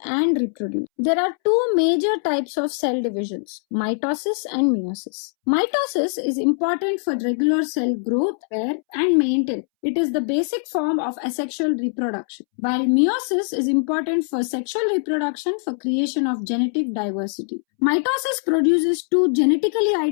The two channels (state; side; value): silent; right; 64 dB below the other